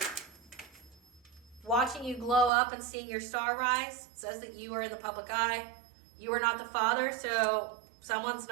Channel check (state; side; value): drops out; left; at 2.5 s